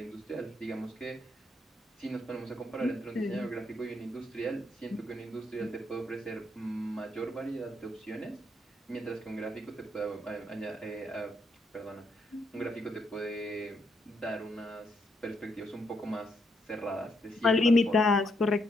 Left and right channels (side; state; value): both; normal; correlation 0.77